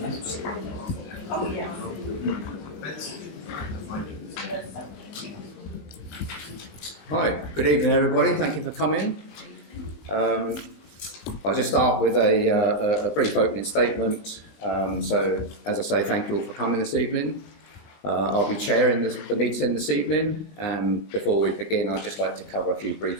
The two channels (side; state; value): right; late; 20 ms